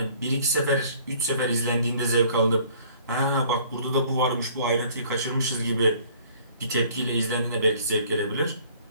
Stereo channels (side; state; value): both; inverted; correlation -0.55